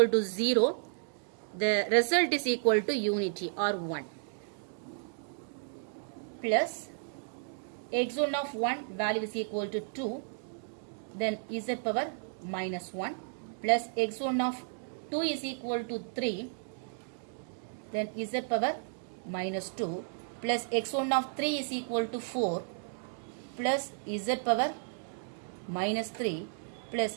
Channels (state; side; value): silent; left; digital silence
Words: to 0. The result is equal to unity or 1. Plus x1 of 1 value is equal to 2. Then z power minus 1 plus x1 of 2 is equal to 3. Then z power minus 2 plus x1 of 3 is equal to 4 plus z power minus 3